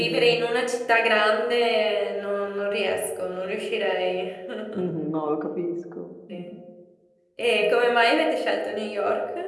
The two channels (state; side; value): identical; both; correlation 1.00